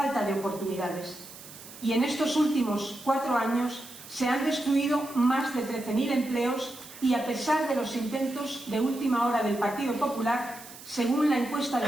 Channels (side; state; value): right; noise; hiss, 16 dB below the sound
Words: de oportunidades. Y en estos últimos 4 años se han destruido más de 13.000 empleos y a pesar de los intentos de última hora del Partido Popular, según la encuesta de